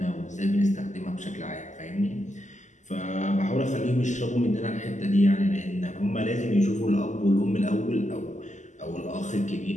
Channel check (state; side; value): late; right; 0.35 ms